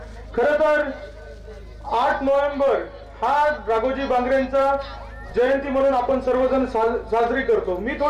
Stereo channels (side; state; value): both; identical; correlation 1.00